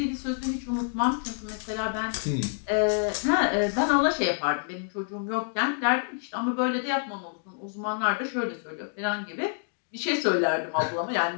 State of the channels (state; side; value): silent; right; 60 dB below the other